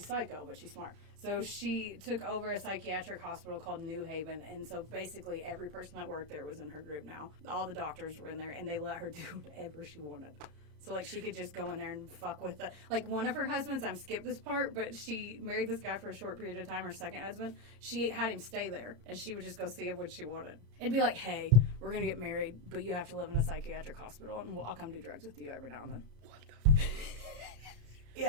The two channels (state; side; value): late; left; 34 ms